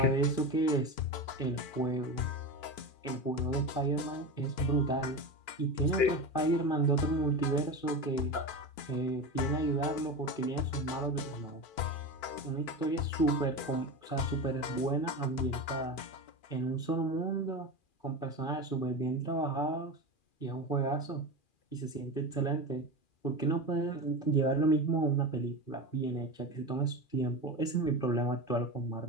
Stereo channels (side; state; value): right; late; 2.4 ms